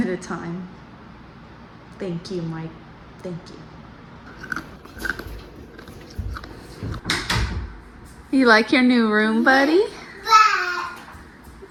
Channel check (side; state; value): both; identical; correlation 1.00